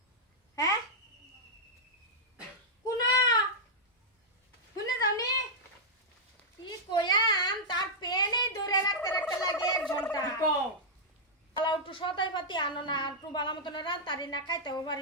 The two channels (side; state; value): both; normal; correlation -0.08